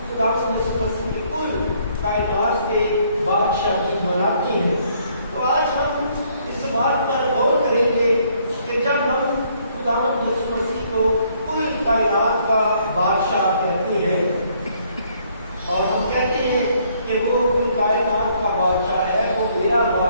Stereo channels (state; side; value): inverted; both; correlation -0.66